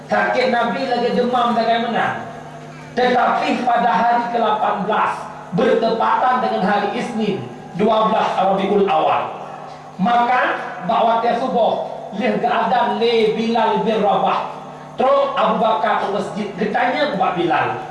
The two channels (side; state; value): both; identical; correlation 1.00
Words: Sakit Nabi lagi demam bagaimana. Tetapi pada hari ke-18 bertepatan dengan hari Isnin 12 Rabiul Awal, maka bawa tiap subuh leh keadaan le Bilal bin Rabah. Terus Abu Bakar ke masjid, ketanya kepada Bilal,